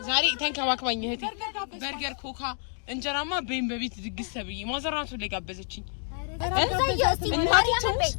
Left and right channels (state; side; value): silent; right; 58 dB below the other